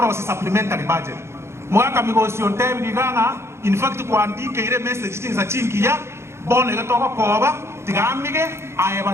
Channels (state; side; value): late; left; 0.13 ms